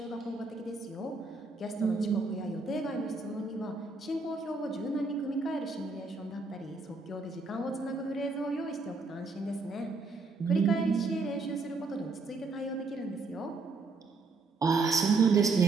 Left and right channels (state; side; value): quieter; left; 3.8 dB